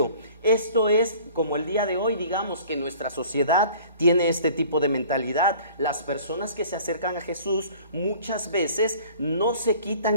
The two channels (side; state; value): both; inverted; correlation -0.49